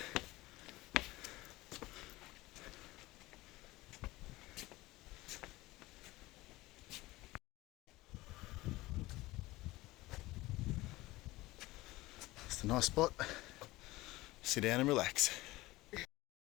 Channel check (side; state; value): right; quieter; 19.4 dB